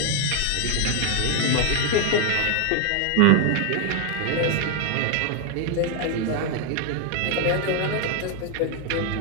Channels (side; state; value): both; different; correlation 0.00